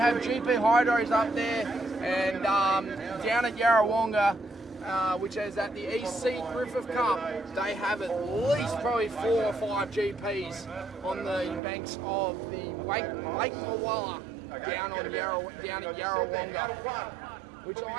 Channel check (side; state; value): left; drops out; at 11.6 s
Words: GP hydros up there, and down at Yarrawonga, which is at the East Sea Griffith Cup, they have at least probably 4 or 5 GPs on the banks of the Lake Mawala down at Yarrawonga, which